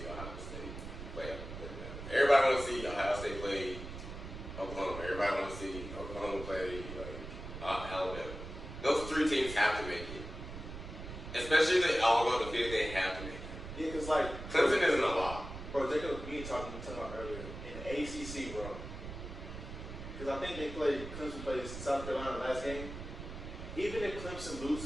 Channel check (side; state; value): right; noise; rumble, 10 dB below the sound